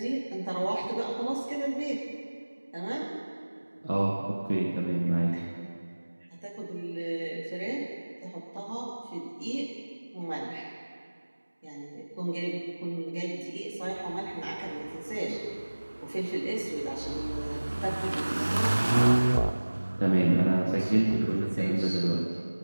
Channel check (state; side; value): inverted; both; correlation -1.00